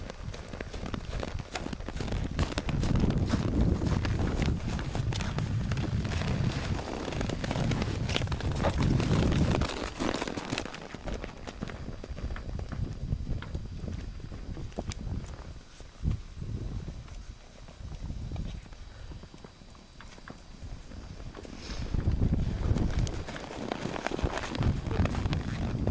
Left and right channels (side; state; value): both; identical; correlation 1.00